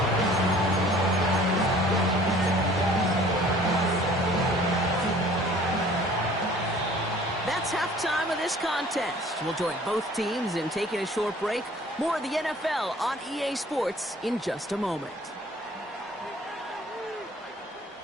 That's halftime of this contest. We'll join both teams in taking a short break. More of the NFL on EA Sports in just a moment.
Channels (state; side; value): normal; both; correlation 0.52